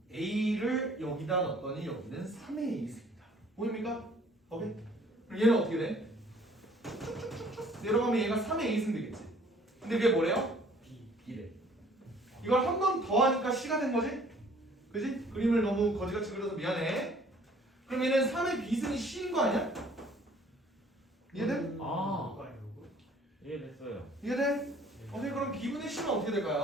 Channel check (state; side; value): normal; both; correlation 0.56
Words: a를 여기다 넣었더니 여기는 3의 a승이다. 보입니까? 오케이? 그럼 얘는 어떻게 돼? 쭉쭉쭉쭉 내려가면 얘가 3의 a승 되겠지. 근데 그게 뭐래요? b래. 이걸 한 번 더 하니까 c가 된 거지? 그지? 그림을 너무 거지같이 그려서 미안해. 그럼 얘는 3의 비승이 C인 거 아니야? 이해돼? 아. 누가 이러고? 이해됐어요. 이해돼? 오케이, 그럼 B분의 C는 어떻게